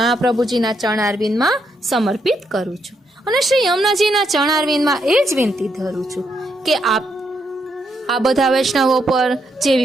ચરણારવિંદમાં સમર્પિત કરું છું અને શ્રી યમુનાજીના ચરણારવિંદમાં એ જ વિનંતી ધરું છું કે આપ આ બધા વૈષ્ણવો પર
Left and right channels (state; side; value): normal; both; correlation 0.78